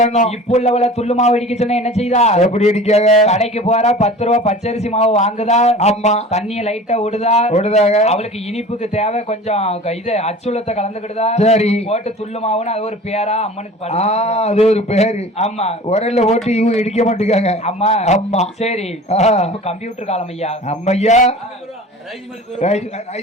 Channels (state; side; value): normal; both; correlation 0.40